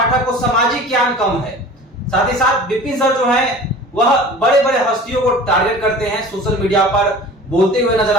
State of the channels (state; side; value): normal; both; correlation 0.41